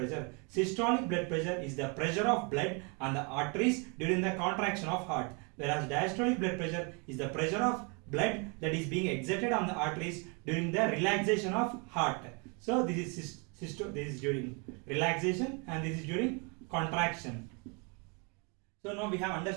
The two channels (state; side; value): quieter; left; 33.3 dB